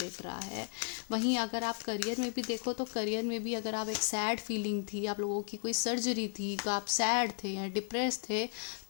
रहा है। वहीं अगर आप करियर में भी देखो, तो करियर में भी अगर आप एक सैड फीलिंग थी, आप लोगों की कोई सर्जरी थी, आप सैड थे या डिप्रेस थे,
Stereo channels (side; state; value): right; silent; 55 dB below the other